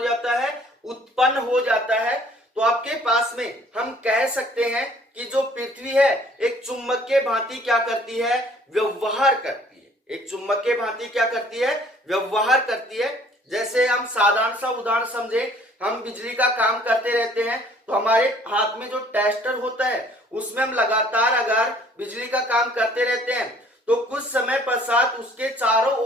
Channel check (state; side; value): normal; both; correlation 0.57